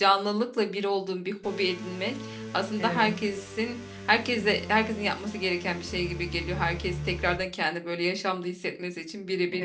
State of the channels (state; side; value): identical; both; correlation 1.00